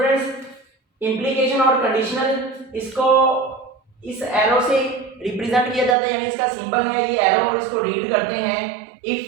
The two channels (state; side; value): drops out; left; at 6.0 s